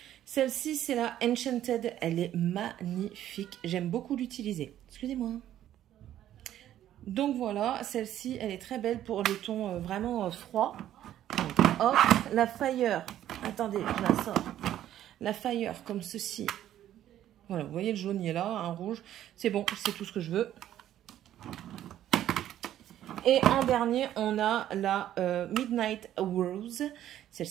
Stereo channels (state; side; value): quieter; left; 12.0 dB